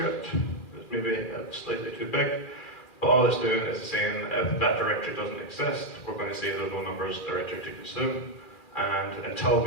it's maybe slightly too big, but all it's doing is saying if that directory doesn't exist, we're going to say there's no numbers directory to consume. And until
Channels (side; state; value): right; late; 2.4 ms